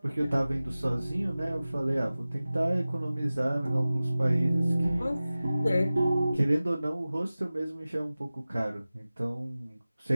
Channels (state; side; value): inverted; both; correlation -0.97